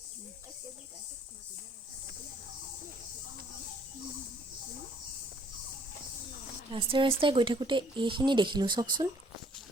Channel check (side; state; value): both; normal; correlation 0.62